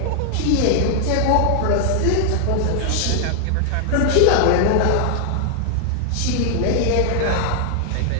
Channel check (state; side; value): different; both; correlation 0.00